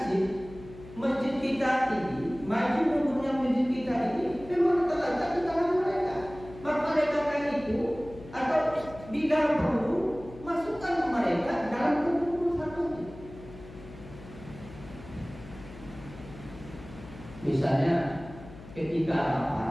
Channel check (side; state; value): left; noise; hum, 17 dB below the sound